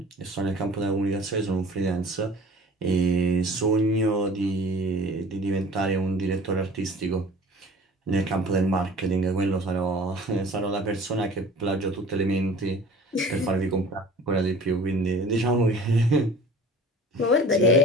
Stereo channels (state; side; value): normal; both; correlation 0.44